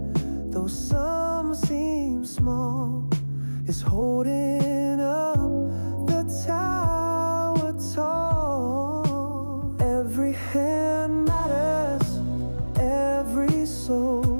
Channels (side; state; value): both; inverted; correlation -1.00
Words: though some seem small, is holding up the tower tall. Every hand matters, every